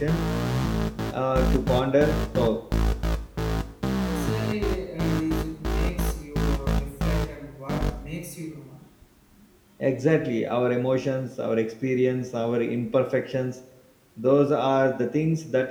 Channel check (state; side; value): identical; both; correlation 1.00